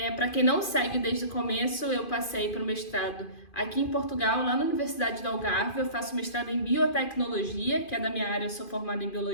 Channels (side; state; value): right; late; 2.5 ms